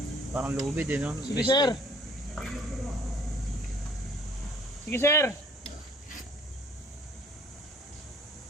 Parang lubid eh, no? Sige sir. Sige sir.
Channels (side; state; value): both; normal; correlation 0.56